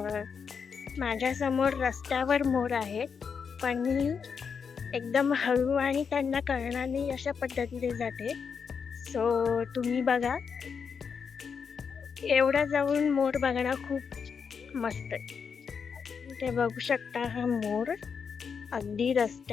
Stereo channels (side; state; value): right; quieter; 6.2 dB